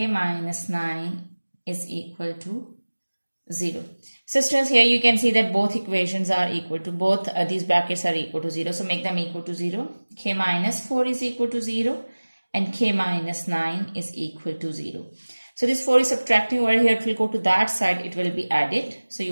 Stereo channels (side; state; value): both; inverted; correlation -1.00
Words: minus 9 is equal to 0. So students, here you can see that both equations are equal to, both these brackets are equal to 0. So make them equal to 0. K minus 4 is equal to 0, and k minus 9 is equal to 0. So this 4 is subtracting over here. It will go to that side. It will be added. So you